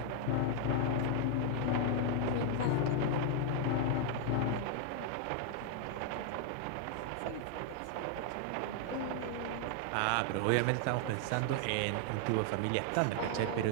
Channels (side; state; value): both; different; correlation 0.00